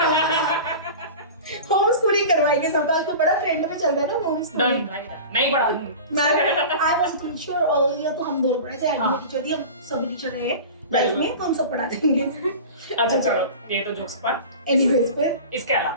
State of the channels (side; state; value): both; inverted; correlation -0.34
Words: होम स्कूलिंग करवाएंगे, सब तो बड़ा ट्रेंड में चल रहा है ना होम स्कूलिंग। नहीं पढ़ा मैं आई वाज अ टीचर और या तो हम दोनों पढ़े थे, मैं टीचर थी, हम सभी टीचर रहे लाइफ में, तो हम सब पढ़ा देंगे। अच्छा चलो ये तो जोक्स पार्ट। एनीवेज, फिर